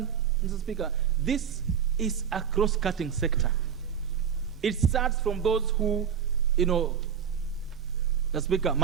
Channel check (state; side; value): quieter; left; 7.9 dB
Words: Mr. Speaker, this is a cross-cutting sector. It starts from those who, Mr. Speaker,